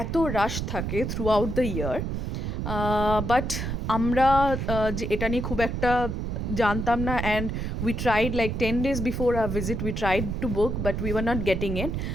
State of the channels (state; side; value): noise; right; rumble, 3 dB below the sound